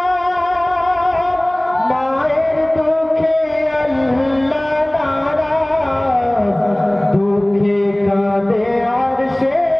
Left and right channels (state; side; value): noise; right; hum, 29 dB below the sound